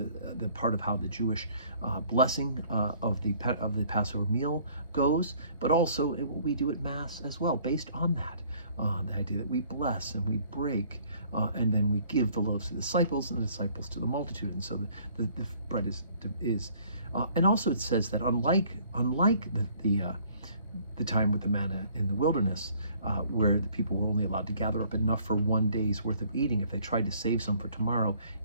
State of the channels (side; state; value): both; inverted; correlation -0.58